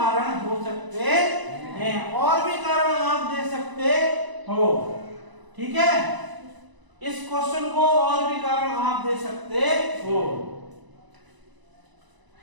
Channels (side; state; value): left; late; 1.0 ms